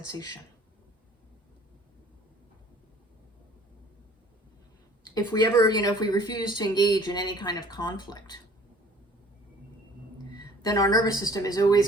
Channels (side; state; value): both; normal; correlation 0.52